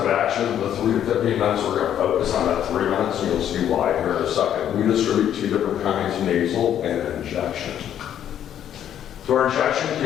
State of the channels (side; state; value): right; quieter; 10.2 dB